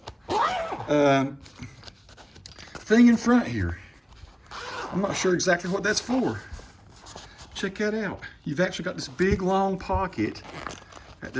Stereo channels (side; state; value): both; identical; correlation 1.00